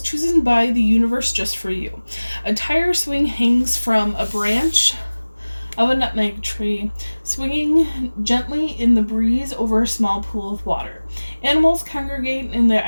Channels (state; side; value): inverted; both; correlation -1.00